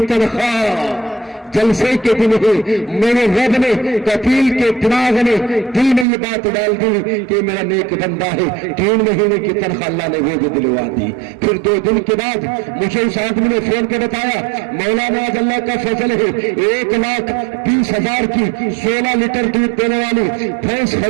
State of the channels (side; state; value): left; drops out; at 6.1 s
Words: تنخواہ جلسے کے دن ہی میرے رب نے، کفیل کے دماغ نے دل میں یہ بات ڈال دی کہ میرا نیک بندہ ہے. 3 مہینے کی تنخواہ اللہ نے وہ بھی دلوا دی. پھر 2 دن کے بعد مجھے اس آدمی نے فون کے بتایا، مولانا آج اللہ کا فضل ہے 1,20,000 کی 16 لیٹر دودھ دینے والی بھینس